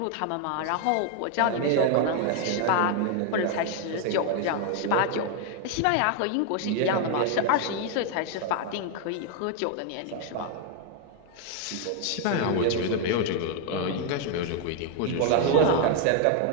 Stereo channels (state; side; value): different; both; correlation 0.01